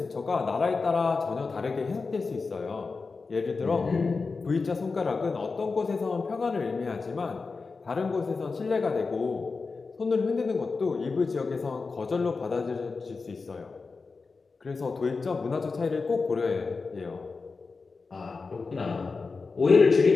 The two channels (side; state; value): right; quieter; 4.3 dB